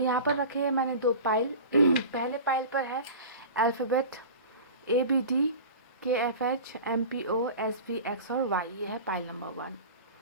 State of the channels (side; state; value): both; inverted; correlation -0.36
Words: पर रखे हैं मैंने दो पाइल। पहले पाइल पर है alphabet ABD KFH MPO SV X और Y। ये है pile number 1।